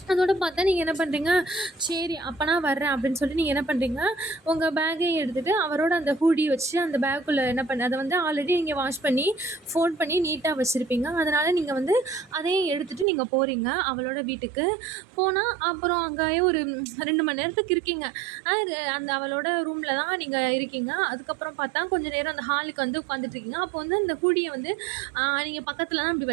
அதோட பார்த்தா நீங்கள் என்ன பண்ணுறீங்க, சரி அப்போ நான் வர்றேன் அப்படின்னு சொல்லிட்டு நீங்கள் என்ன பண்ணுறீங்க, உங்கள் பேக்கையும் எடுத்துகிட்டு அவரோட அந்த ஹூடி வச்சு அந்த பேக்குள்ளே அதை வந்து ஆல்ரெடி நீங்கள் வாஷ் பண்ணி ஃபோல்ட் பண்ணி நீட்டாக வச்சுருப்பீங்க. அதனால் நீங்கள் வந்து அதையும் எடுத்துகிட்டு நீங்கள் போகிறீங்க அவளோட வீட்டுக்கு. போனால் அப்புறம் அங்கேயே ஒரு 2 மணி நேரத்துக்கு இருக்கீங்க. அந்த அவளோட ரூமில் தான் நீங்கள் இருக்கீங்க. அதுக்கப்புறம் பார்த்தா கொஞ்சம் நேரம் அந்த ஹாலுக்கு வந்து உட்காந்துட்ருக்கீங்க. அப்போ வந்து அந்த ஹூடியை வந்து நீங்கள் பக்கத்தில் தான் அப்படி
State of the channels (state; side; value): drops out; left; at 13.1 s